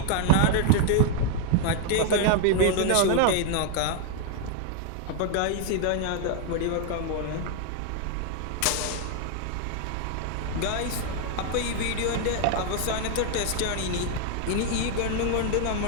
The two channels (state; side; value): different; both; correlation 0.00